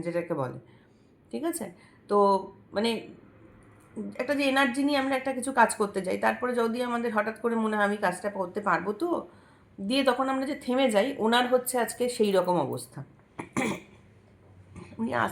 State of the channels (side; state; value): both; identical; correlation 1.00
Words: যেটাকে বলে, ঠিক আছে? তো মানে একটা যে এনার্জি নিয়ে আমরা একটা কিছু কাজ করতে যাই, তারপরে যদি আমাদের হঠাৎ করে মনে হয় আমি কাজটা করতে পারবো তো, দিয়ে তখন আমরা যে থেমে যাই, ওনার হচ্ছে আজকে সেই রকম অবস্থা। উনি